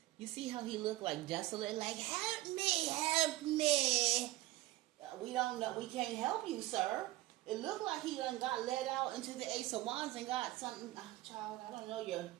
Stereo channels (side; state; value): left; quieter; 17.4 dB